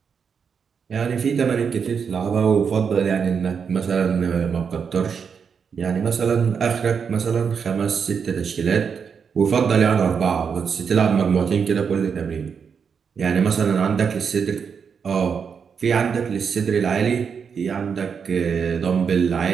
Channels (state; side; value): quieter; left; 6.4 dB